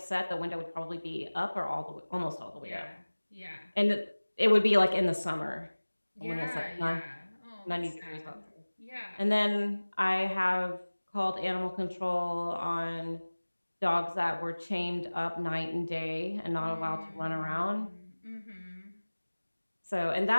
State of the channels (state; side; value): inverted; both; correlation -1.00